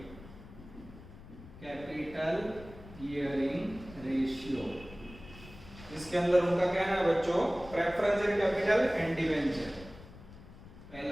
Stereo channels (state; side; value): noise; left; rumble, 17 dB below the sound